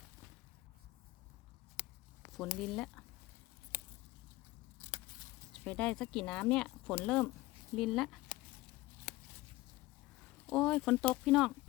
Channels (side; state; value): right; quieter; 19.1 dB